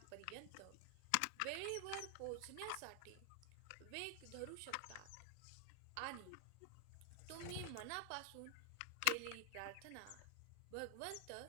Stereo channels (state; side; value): different; both; correlation 0.00